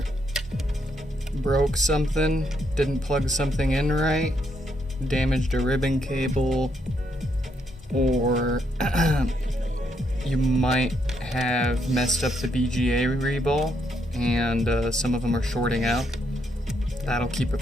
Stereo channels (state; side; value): normal; both; correlation 0.76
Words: broke something, didn't plug something in right, damaged a ribbon cable, or you might have messed up the BGA reball, and some of them are shorting out. That'll keep it